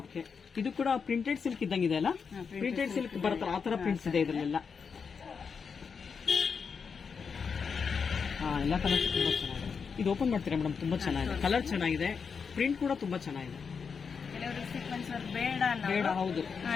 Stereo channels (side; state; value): right; quieter; 5.9 dB